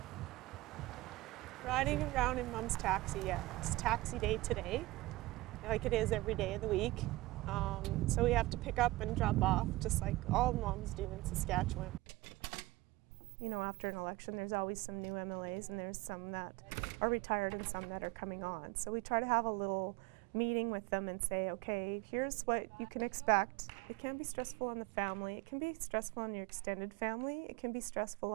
Riding around in Mom's taxi, yeah. It's taxi day today, like it is every day of the week. So we have to pick up and drop off, just like all moms do in Saskatchewan. You know, after an election, there's always some new MLAs, and there's some that are retired and some that are coming on. So we try to have a little meeting with them and say, okay, here's what you can expect. It can be stressful on the family. It can be stressful on your extended family. It can be stressful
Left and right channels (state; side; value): quieter; left; 19.6 dB